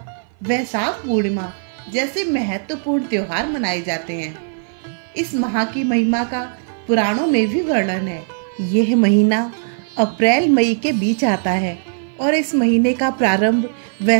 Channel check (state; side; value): silent; left; 57 dB below the other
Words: वैशाख पूर्णिमा जैसे महत्वपूर्ण त्योहार मनाए जाते हैं। इस माह की महिमा का पुराणों में भी वर्णन है। यह महीना अप्रैल मई के बीच आता है और इस महीने का प्रारंभ